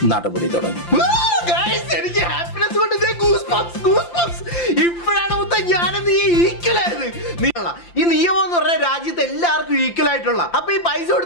നടപടി തുടങ്ങി. എനിക്ക് ഹാപ്പിനെസ് കൊണ്ട് ഇപ്പോഴാണ് ഞാനെന്ന് ഈക്വലായത്. ഈ നിയമം എന്ന് പറഞ്ഞാൽ രാജ്യത്ത് എല്ലാവർക്കും ഈക്വൽ ആയിട്ടുള്ള. അപ്പൊ ഈ പൈസ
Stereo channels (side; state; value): right; late; 5.8 ms